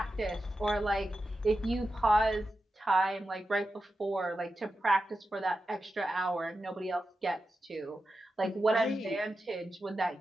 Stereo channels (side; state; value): both; normal; correlation 0.91